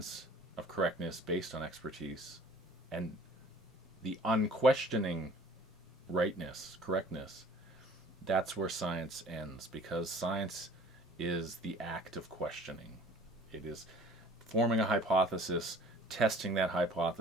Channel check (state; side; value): normal; both; correlation 0.50